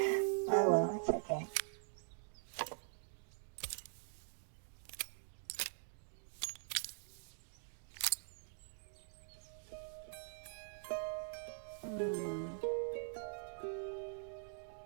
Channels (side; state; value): left; silent; digital silence